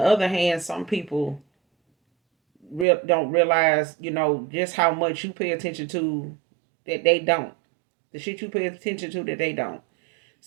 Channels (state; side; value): drops out; left; at 2.9 s